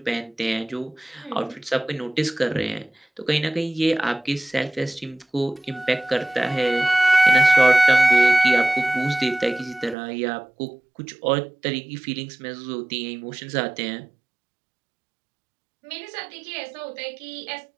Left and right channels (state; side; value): drops out; left; at 10.0 s